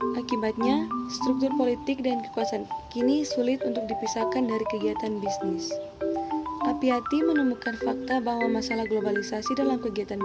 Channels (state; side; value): identical; both; correlation 1.00